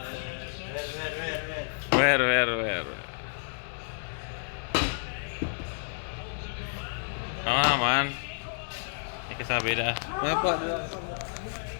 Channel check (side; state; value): right; silent; 58 dB below the other